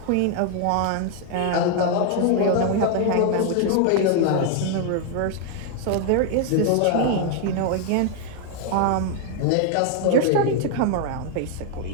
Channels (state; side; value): different; both; correlation 0.00